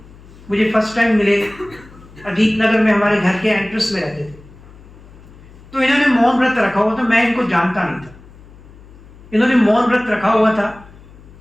मुझे फर्स्ट टाइम मिले, अजीत नगर में हमारे घर के एंट्रेंस में रहते थे, तो इन्होंने मौन व्रत रखा हुआ था। मैं इनको जानता नहीं था, इन्होंने मौन व्रत रखा हुआ था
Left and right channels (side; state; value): left; noise; hum, 22 dB below the sound